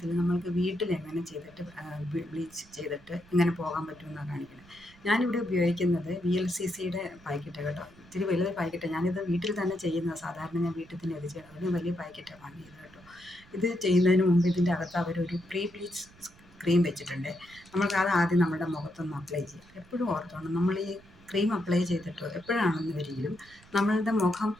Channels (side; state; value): right; noise; rumble, 25 dB below the sound